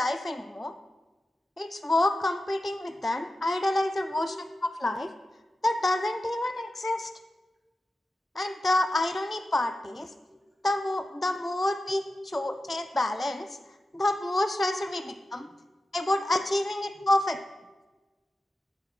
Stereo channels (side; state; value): both; normal; correlation 0.92